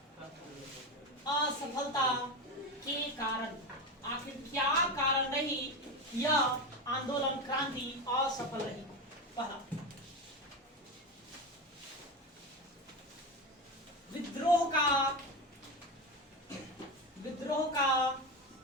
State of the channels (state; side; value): normal; both; correlation 0.19